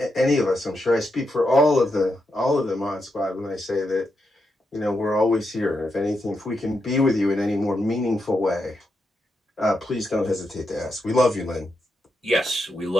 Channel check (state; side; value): normal; both; correlation 0.84